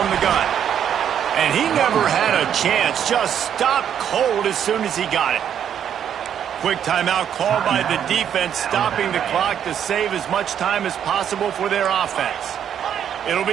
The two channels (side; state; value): left; quieter; 9.1 dB